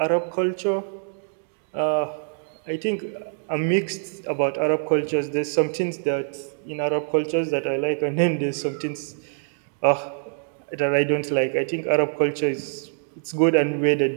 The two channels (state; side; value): silent; left; digital silence